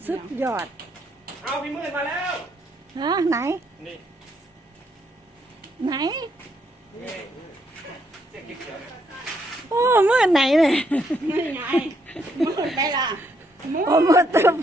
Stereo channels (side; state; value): both; normal; correlation 0.74